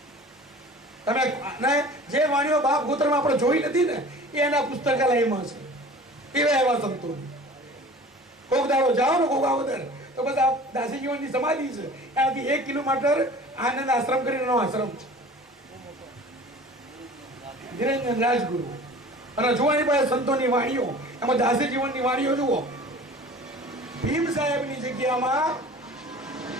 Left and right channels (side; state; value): both; normal; correlation 0.43